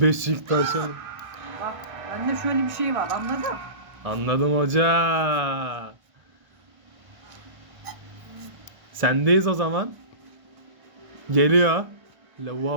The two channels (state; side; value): late; left; 1.3 ms